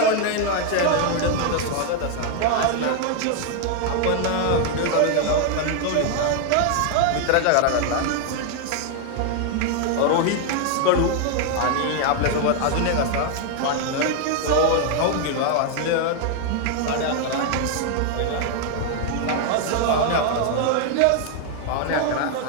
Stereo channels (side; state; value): both; different; correlation 0.00